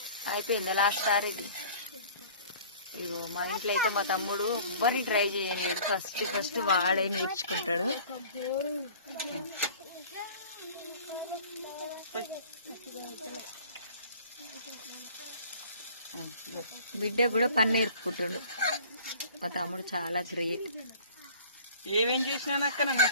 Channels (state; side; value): inverted; both; correlation -0.47